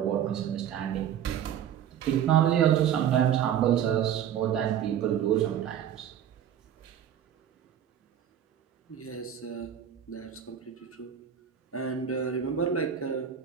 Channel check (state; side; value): quieter; left; 9.5 dB